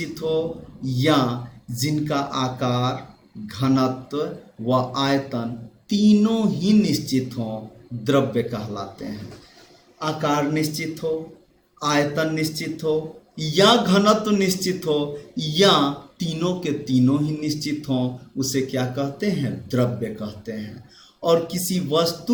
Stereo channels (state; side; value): identical; both; correlation 1.00